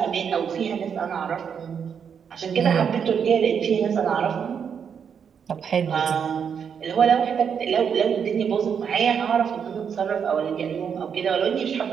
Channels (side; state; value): left; quieter; 7.2 dB